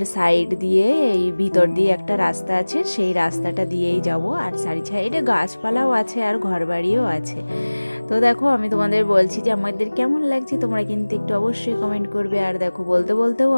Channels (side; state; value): both; inverted; correlation -1.00